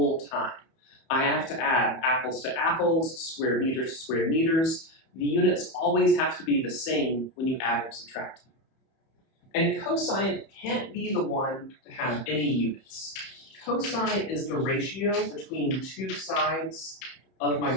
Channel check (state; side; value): late; right; 31 ms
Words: time. I have to add apples to apples, square meters to square meters. The units always have to be the same when you add and subtract them. And cosine can't be the one to have any units. Cosine is the ratio between two sides of my